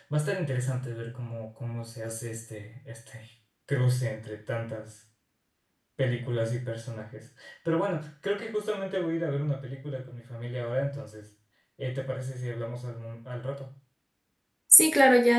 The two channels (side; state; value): both; identical; correlation 1.00